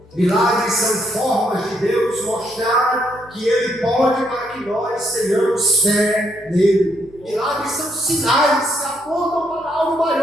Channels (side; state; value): both; normal; correlation 0.74